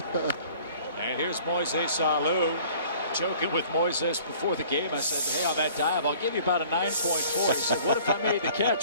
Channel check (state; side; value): inverted; both; correlation -0.51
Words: here's Moises Salou. Joking with Moises before the game. I said, hey, on that dive, I'll give you about a 9.4. He said, what if I made the